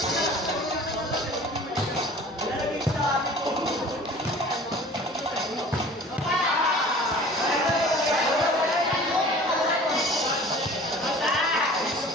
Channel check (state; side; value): normal; both; correlation 0.45